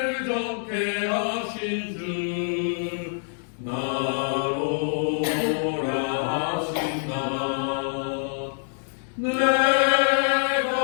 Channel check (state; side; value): silent; right; digital silence